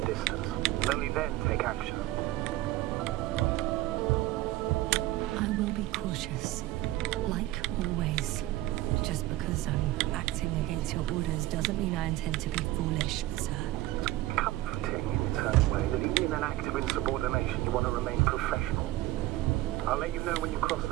distance. Only then take action. I will be cautious. Like always. Just because I'm acting against your orders doesn't mean I intend to be foolish, sir. Comforting in its own way that even in an act of insubordination you want to remain professional. I'll let you know when you cross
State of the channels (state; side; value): quieter; left; 16.4 dB